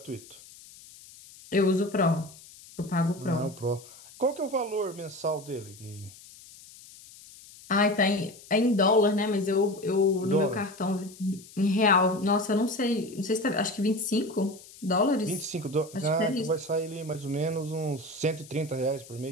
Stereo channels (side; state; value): left; noise; hiss, 20 dB below the sound